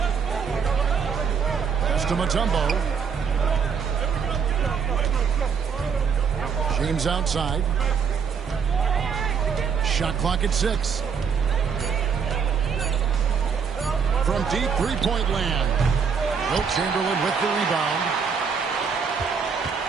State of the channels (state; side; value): quieter; left; 6.4 dB